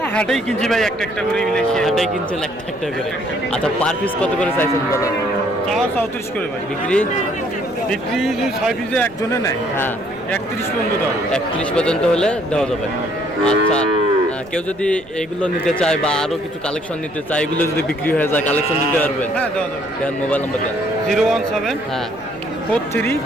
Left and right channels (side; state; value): right; noise; rumble, 25 dB below the sound